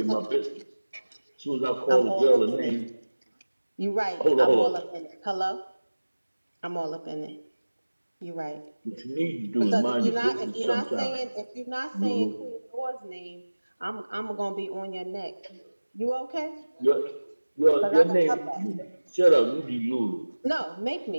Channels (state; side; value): inverted; both; correlation -1.00